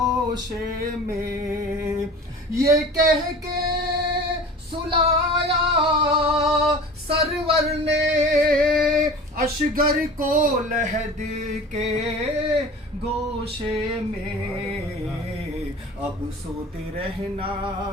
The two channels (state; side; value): normal; both; correlation 0.39